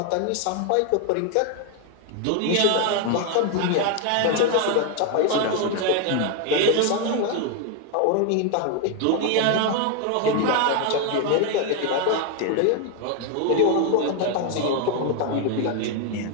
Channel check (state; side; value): different; both; correlation 0.01